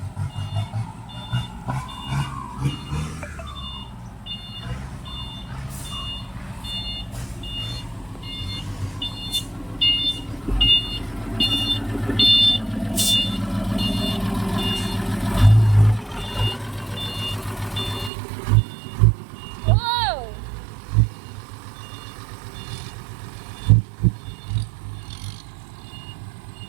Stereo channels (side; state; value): left; drops out; at 18.1 s